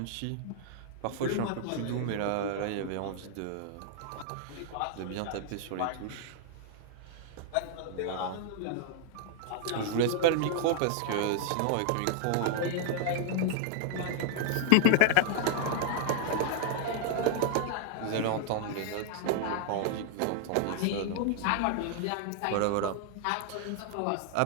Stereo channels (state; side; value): different; both; correlation 0.00